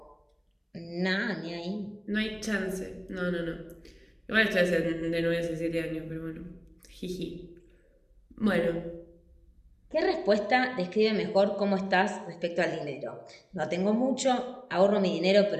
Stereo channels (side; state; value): both; identical; correlation 1.00